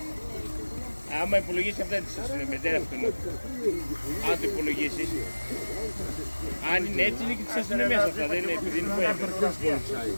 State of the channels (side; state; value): both; inverted; correlation -1.00